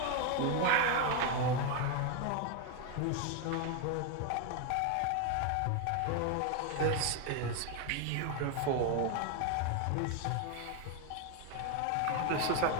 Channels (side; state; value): both; different; correlation 0.01